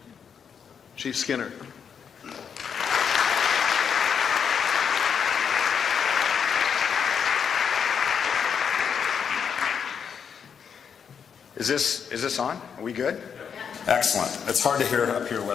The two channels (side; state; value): right; quieter; 7.1 dB